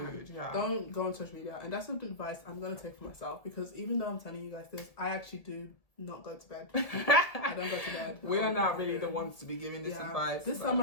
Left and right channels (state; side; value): late; right; 1.8 ms